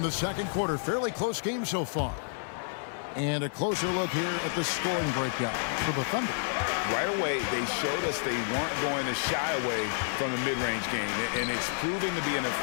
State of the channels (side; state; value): right; silent; 58 dB below the other